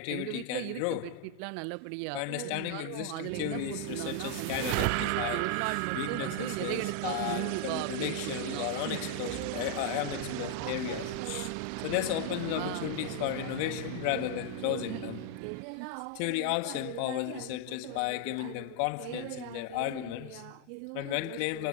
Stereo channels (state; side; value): different; both; correlation 0.00